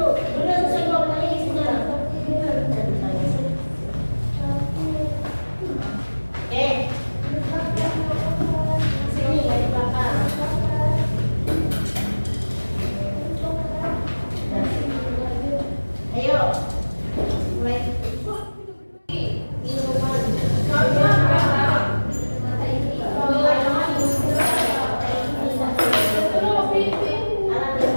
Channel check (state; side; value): inverted; both; correlation -1.00